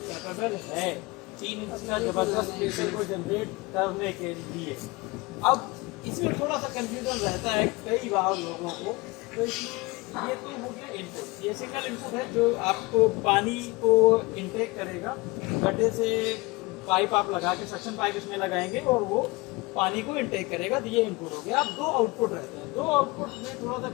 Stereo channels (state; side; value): quieter; right; 23.8 dB